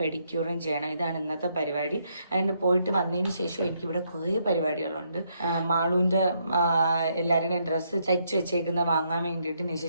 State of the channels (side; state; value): both; inverted; correlation -0.75